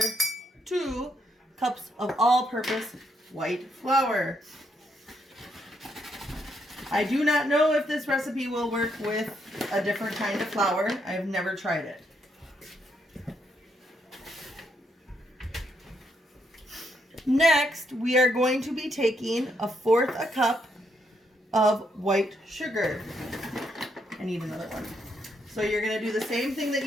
2 cups of all-purpose white flour. I do not know if this recipe will work with a different kind of flour. I've never tried it. Next, we are going to be taking 1/4 a cup of white sugar. I need another one. So you're going to do the same thing that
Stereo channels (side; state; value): both; normal; correlation 0.76